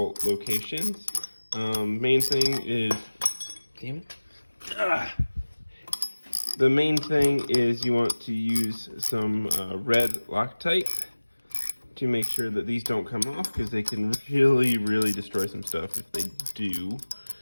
locations. Main thing is, damn it. The main thing is you want to use some red Loctite to make sure that these don't come off, because they can really destroy some stuff if they do.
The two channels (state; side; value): inverted; both; correlation -1.00